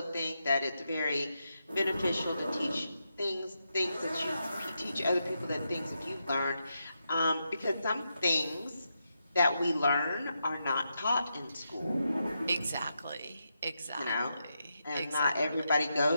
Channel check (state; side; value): inverted; both; correlation -0.85